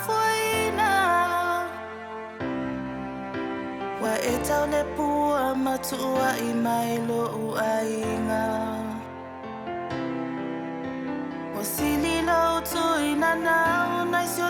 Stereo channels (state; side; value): identical; both; correlation 1.00